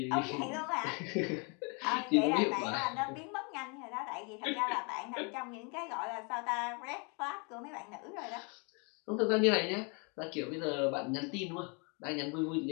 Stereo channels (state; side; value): quieter; right; 34.3 dB